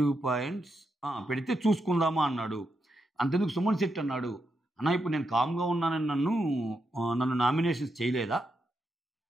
పాయింట్స్ పెడితే చూసుకుందామా అన్నాడు. అంతెందుకు సుమన్ శెట్టి అన్నాడు, అన్న ఇప్పుడు నేను కామ్‌గా ఉన్నానని నన్ను నామినేషన్స్ చేయలేదా?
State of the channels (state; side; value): normal; both; correlation 0.84